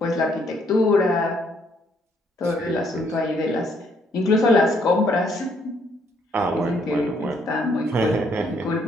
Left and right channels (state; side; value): normal; both; correlation 0.69